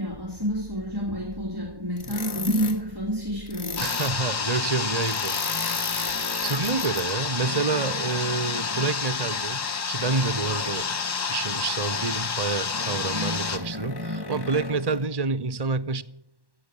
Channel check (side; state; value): left; late; 1.1 ms